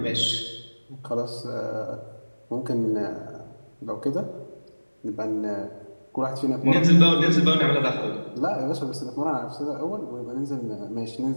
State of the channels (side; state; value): both; inverted; correlation -1.00